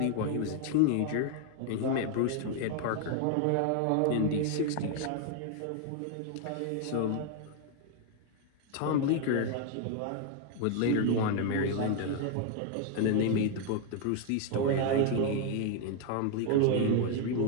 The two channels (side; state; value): both; different; correlation 0.00